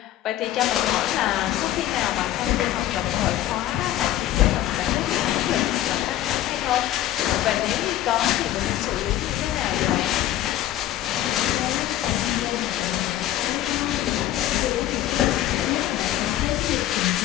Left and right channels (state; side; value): quieter; right; 13.2 dB